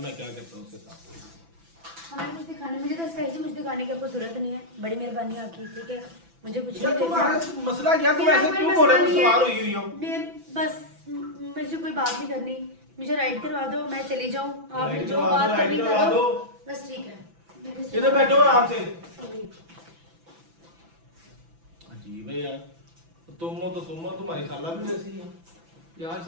क्या करता हूँ उसके साथ। हमें कुछ दिखाने, मुझे तो स्पेशली कुछ दिखाने की आपको जरूरत नहीं है, बड़ी मेहरबानी आपकी, ठीक है। मुझे कुछ यार नहीं तुम्हारा देखना। मसला क्या, तुम मेरा ऐसे कोई क्यों मसला बोल रहे हो, नहीं है। सवार हुई हो। बस मुझे कोई बात नहीं करनी, मुझे राइड करवा दो, मैं चली जाऊँ, आपने राइड जो करवा दो, बात राइड करनी करवा करो, दो। बस ठीक है। इधर बैठो आराम से। अजीब है यार, तुम हो तो तुम हो, तुम्हारी खाला भी वैसी है। यार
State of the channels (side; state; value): left; late; 6.0 ms